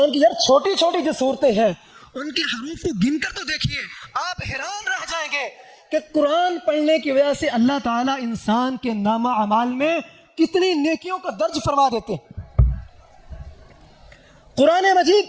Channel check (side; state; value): both; identical; correlation 1.00